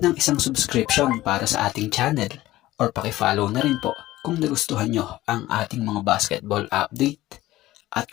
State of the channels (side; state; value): right; quieter; 16.4 dB